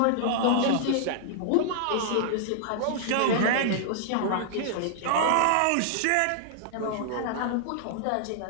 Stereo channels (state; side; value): different; both; correlation -0.01